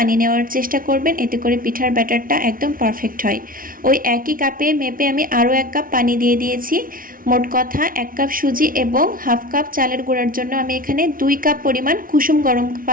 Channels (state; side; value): late; left; 0.41 ms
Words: নেওয়ার চেষ্টা করবেন, এতে করে পিঠার ব্যাটারটা একদম পারফেক্ট হয়। ওই একই কাপে মেপে আমি আরও 1 কাপ পানি দিয়ে দিয়েছি। মোট কথা 1 কাপ সুজি এবং 1/2 কাপ চালের গুঁড়ার জন্য আমি এখানে 2 কাপ পরিমাণ কুসুম গরম